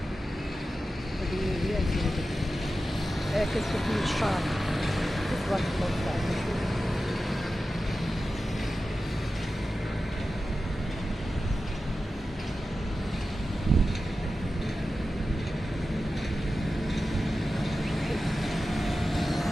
هادو موبيات هادو. كتشوف من الشارع. تبارك الله تعالى.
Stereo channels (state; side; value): normal; both; correlation 0.93